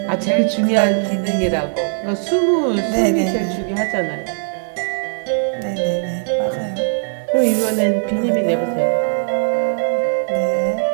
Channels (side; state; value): left; silent; digital silence